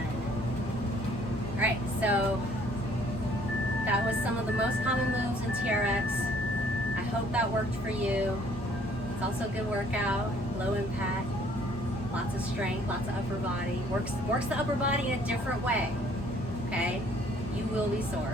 All right, so that was some of the most common moves in TRX. I hope that worked for you. It's also a good workout, low impact, lots of strength, lots of upper body. Works the upper body in a different way, okay? You will be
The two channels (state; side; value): normal; both; correlation 0.59